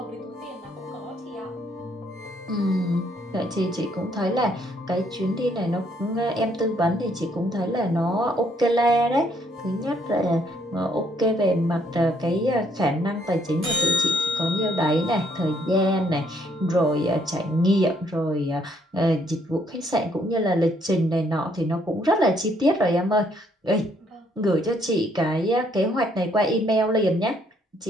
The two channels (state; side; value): normal; both; correlation 0.68